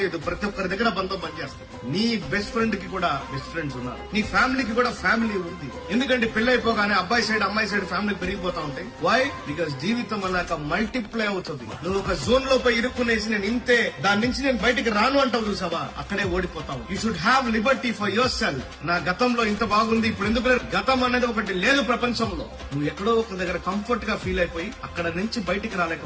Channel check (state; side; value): identical; both; correlation 1.00